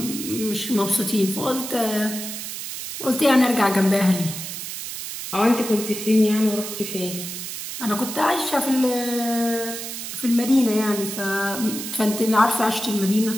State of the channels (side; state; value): right; noise; hiss, 7 dB below the sound